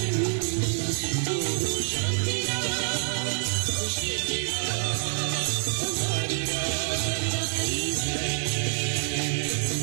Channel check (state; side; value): silent; left; digital silence